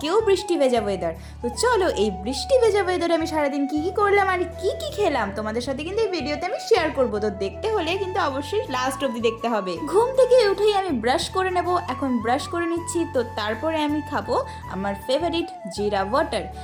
বৃষ্টি ভেজা ওয়েদার। তো চলো এই বৃষ্টি ভেজা ওয়েদারে আমি সারাদিন কি কি করলাম আর কি কি খেলাম তোমাদের সাথে কিন্তু এই ভিডিওতে আমি শেয়ার করবো। তো দেখতে হলে কিন্তু অবশ্যই লাস্ট অবধি দেখতে হবে। ঘুম থেকে উঠেই আমি ব্রাশ করে নেব, এখন ব্রাশ করে নিচ্ছি। তো তারপরে আমি খাবো আমার ফেভারিট জিরা ওয়াটার,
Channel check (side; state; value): both; identical; correlation 1.00